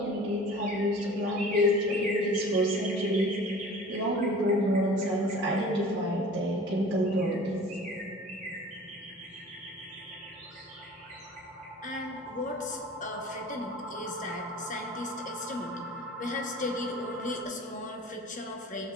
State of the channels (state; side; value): normal; both; correlation 0.43